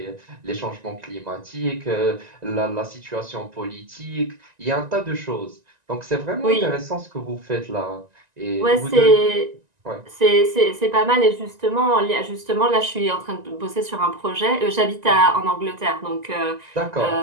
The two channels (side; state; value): left; late; 1.9 ms